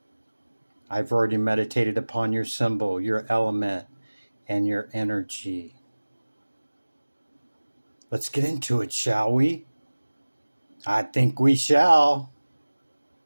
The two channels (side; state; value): both; inverted; correlation -1.00